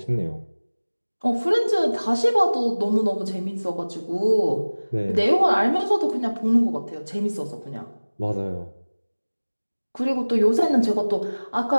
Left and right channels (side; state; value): both; inverted; correlation -1.00